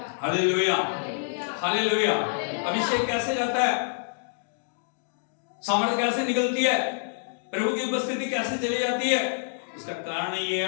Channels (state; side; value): silent; right; digital silence